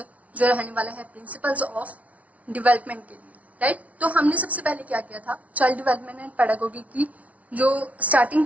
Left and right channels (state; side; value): late; left; 0.067 ms